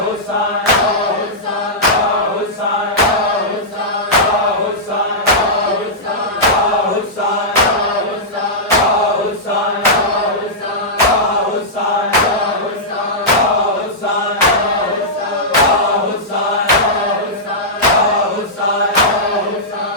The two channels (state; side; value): normal; both; correlation -0.12